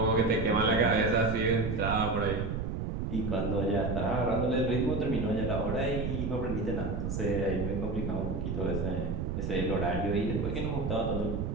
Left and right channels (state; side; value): noise; right; rumble, 2 dB below the sound